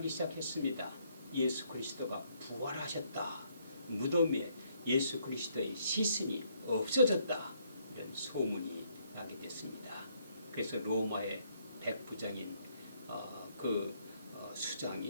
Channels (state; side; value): inverted; both; correlation -0.70